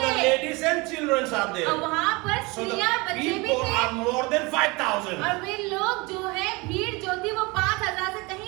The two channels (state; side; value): quieter; left; 25.6 dB